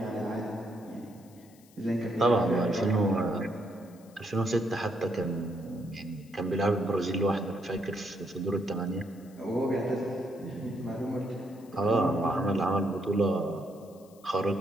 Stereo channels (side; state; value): left; noise; hiss, 27 dB below the sound